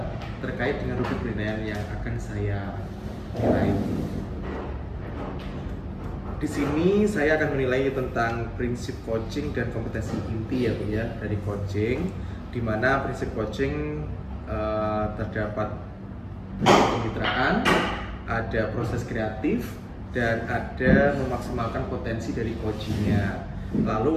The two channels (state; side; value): identical; both; correlation 1.00